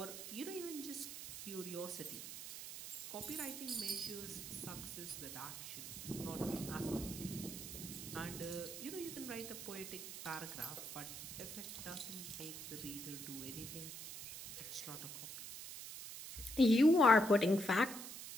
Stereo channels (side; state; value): right; noise; hiss, 9 dB below the sound